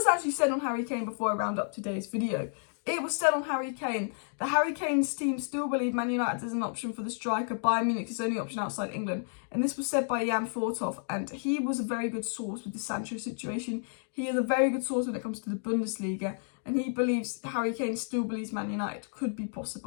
actually said on Harry Kane before I round up today's video? It was said on Harry Kane that Harry Kane's team still believe Man United is an option for the striker. Bayern Munich is the only option outside England. And this was said by Jan Fortov, and he was a very good source with the Sancho situation. He is a very good source when it comes to the Bundesliga, and he believes, Harry Kane still believes Man United could be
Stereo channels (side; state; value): right; silent; digital silence